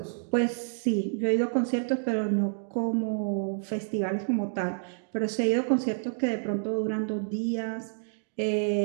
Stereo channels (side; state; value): left; silent; digital silence